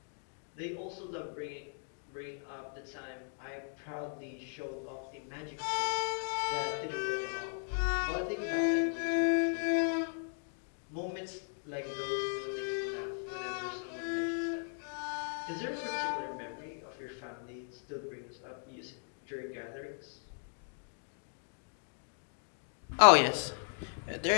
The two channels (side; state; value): right; silent; 53 dB below the other